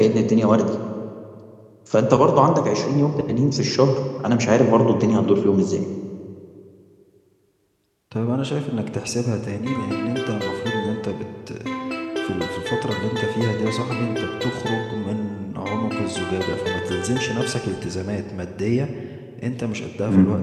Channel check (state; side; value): identical; both; correlation 1.00